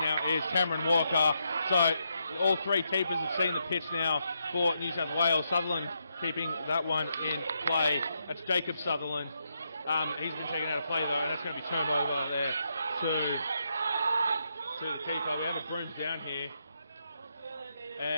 now is Cameron Walker. So all three keepers have seen the pitch now for New South Wales. Sutherland keeping that one in play. That's Jacob Sutherland. He's been taken out of play though, and that's going to be turned over there to the keeper. We have a brooms down here,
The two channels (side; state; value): both; inverted; correlation -0.81